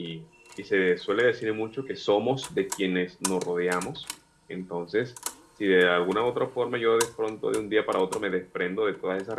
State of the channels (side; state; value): both; identical; correlation 1.00